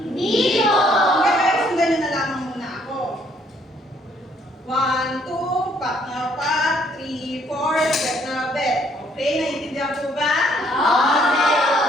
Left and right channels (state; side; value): normal; both; correlation 0.66